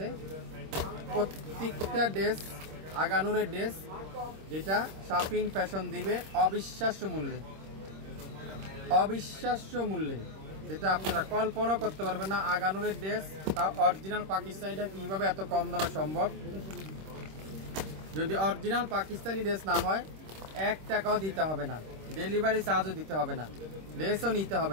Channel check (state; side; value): late; left; 26 ms